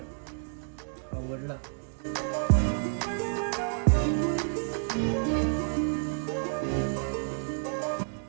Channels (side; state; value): left; silent; digital silence